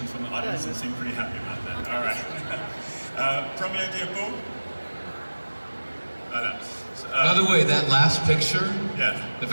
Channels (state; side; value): inverted; both; correlation -1.00